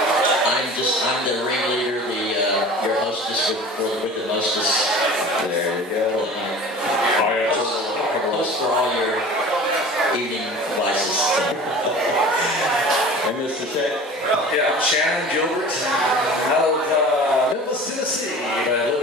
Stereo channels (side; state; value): both; normal; correlation 0.40